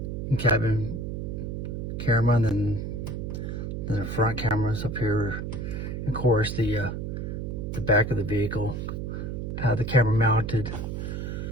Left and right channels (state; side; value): noise; right; hum, 4 dB below the sound